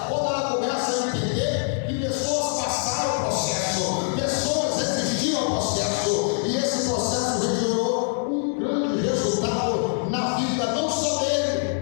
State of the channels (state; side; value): silent; right; 62 dB below the other